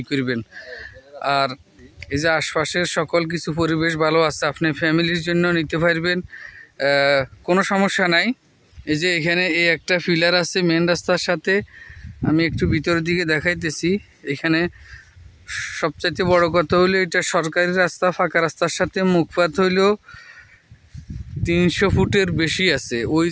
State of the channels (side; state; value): both; identical; correlation 1.00